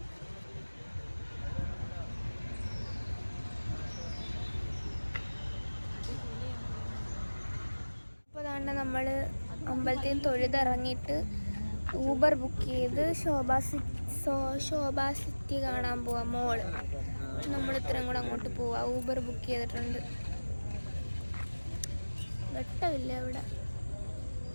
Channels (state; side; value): inverted; both; correlation -1.00